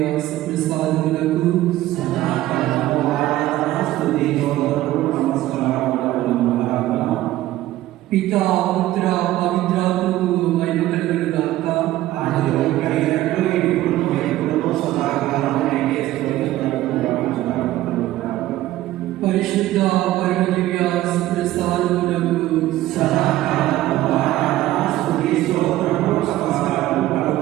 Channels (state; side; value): quieter; left; 15.2 dB